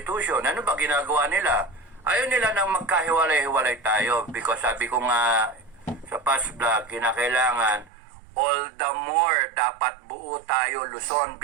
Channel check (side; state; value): left; drops out; at 7.9 s